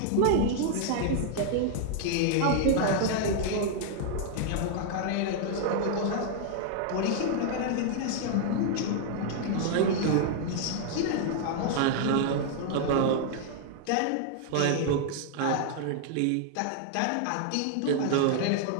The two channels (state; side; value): different; both; correlation 0.00